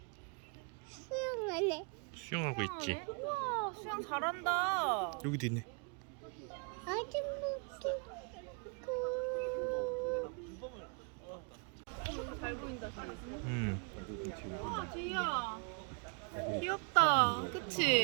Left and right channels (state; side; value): quieter; left; 36.3 dB